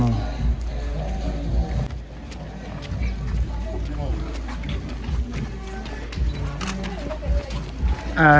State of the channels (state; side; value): identical; both; correlation 1.00